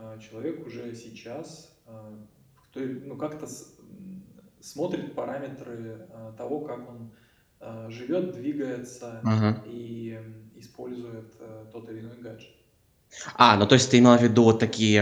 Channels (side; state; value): both; identical; correlation 1.00